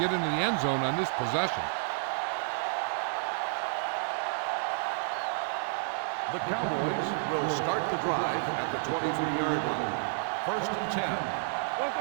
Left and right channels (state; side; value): silent; left; 57 dB below the other